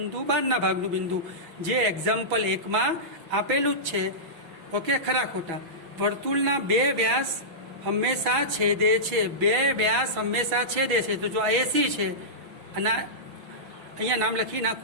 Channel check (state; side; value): late; left; 6.3 ms